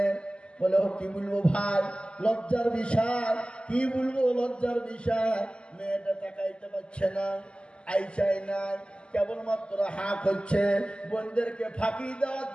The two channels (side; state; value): right; late; 0.051 ms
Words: বলে কি বলবো ভাই, লজ্জার বিষয়। কি বলবো লজ্জার বিষয়? মেয়েটা তাকাইতে পারছে না, আই চাই না, কেবলমাত্র হাঁ করছে। বোনদেরকে ফাঁকি দেওয়ার